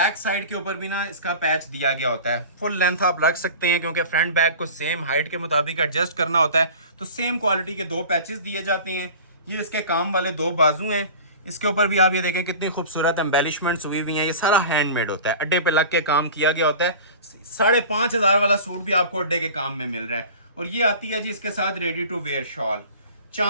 साइड के ऊपर भी ना इसका पैच दिया गया होता है। फुल लेंथ आप रख सकते हैं क्योंकि फ्रंट बैक को सेम हाइट के मुताबिक एडजस्ट करना होता है, तो सेम क्वालिटी के 2 पैचेस दिए जाते हैं। ये इसके काम वाले 2 बाजू हैं। इसके ऊपर भी आप ये देखें कितनी खूबसूरत एम्बेलिशमेंट्स हुई हुई हैं। ये सारा हैंडमेड होता है, अड्डे पे लग के काम किया गया होता है। 5500 वाला सूट भी आपको अड्डे के काम में मिल रहा है। और ये आती है जी इसके साथ ready to wear shawl.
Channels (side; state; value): both; inverted; correlation -0.38